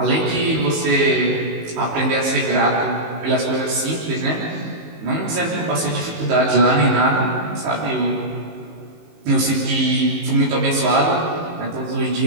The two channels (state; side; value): late; left; 19 ms